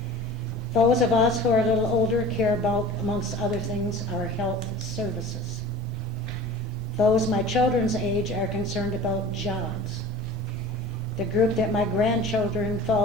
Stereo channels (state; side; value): normal; both; correlation 0.40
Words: Those of us who are a little older care about, amongst other things, our health services. Those my children's age are concerned about jobs. The group that my grandchildren